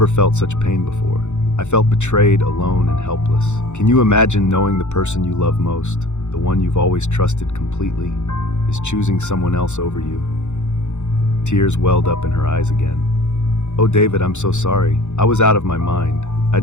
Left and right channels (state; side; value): late; right; 0.84 ms